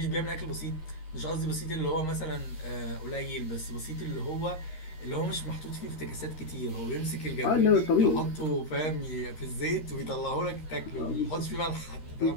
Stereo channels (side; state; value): right; late; 13 ms